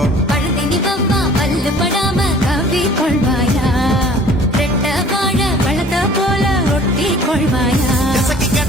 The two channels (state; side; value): normal; both; correlation 0.51